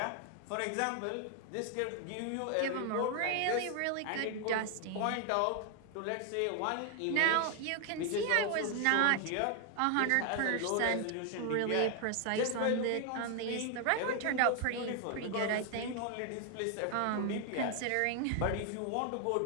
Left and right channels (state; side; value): different; both; correlation 0.00